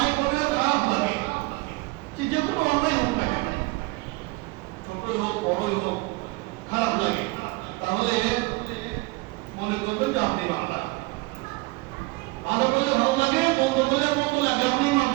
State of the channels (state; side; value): quieter; left; 23.9 dB